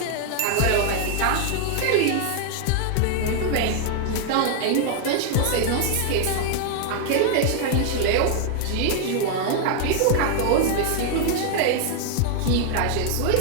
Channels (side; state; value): both; different; correlation 0.00